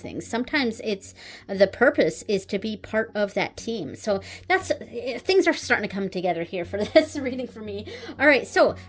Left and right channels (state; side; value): identical; both; correlation 1.00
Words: things. Sometimes it's, the purpose is to be part of that team. So that's, things are starting to come together here for this reading for me. All right, so